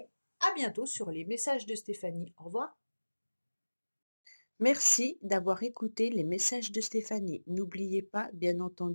à bientôt sur les messages de Stéphanie. Au revoir. Merci d'avoir écouté les messages de Stéphanie. N'oubliez pas, bien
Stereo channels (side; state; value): both; inverted; correlation -1.00